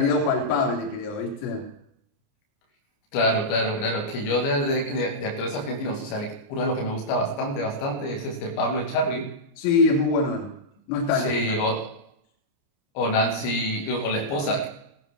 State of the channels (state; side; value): late; right; 29 ms